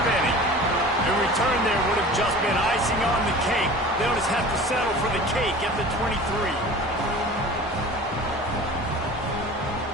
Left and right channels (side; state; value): both; normal; correlation 0.40